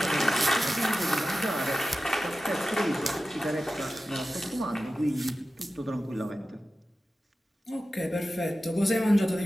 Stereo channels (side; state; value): both; normal; correlation 0.94